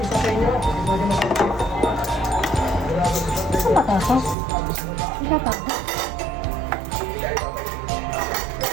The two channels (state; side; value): drops out; left; at 4.4 s